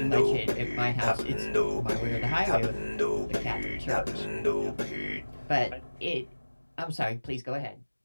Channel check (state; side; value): inverted; both; correlation -1.00